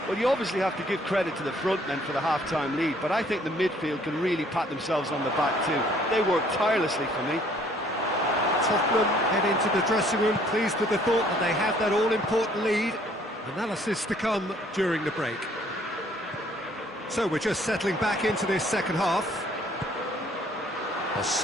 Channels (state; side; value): normal; both; correlation 0.60